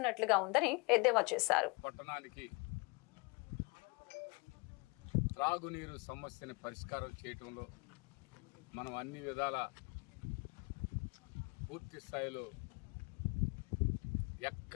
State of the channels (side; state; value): right; quieter; 29.8 dB